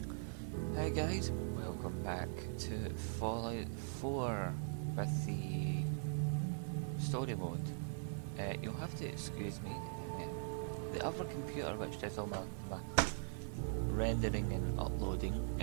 Hi guys, welcome back to Fallout 4 with the story mode. You'll have to excuse me. The other computer which does all my rendering and uploading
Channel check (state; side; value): silent; left; 50 dB below the other